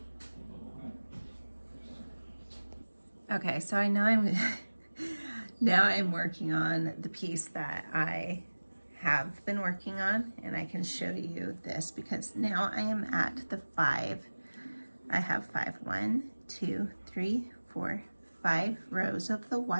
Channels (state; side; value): inverted; both; correlation -1.00